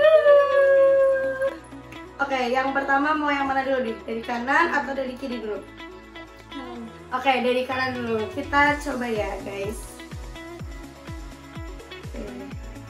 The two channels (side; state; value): both; identical; correlation 1.00